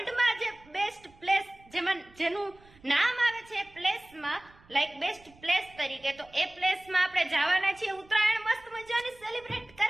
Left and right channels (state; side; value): noise; right; rumble, 27 dB below the sound